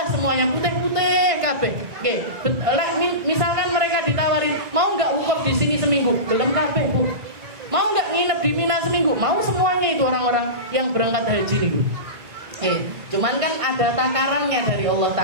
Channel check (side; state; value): left; late; 1.6 ms